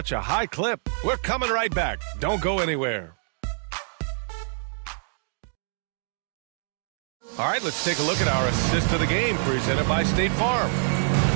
a high clip. We're coming right back. Don't go anywhere. All right, let's take a look at our assist of the game presented by State Farm.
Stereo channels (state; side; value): silent; left; digital silence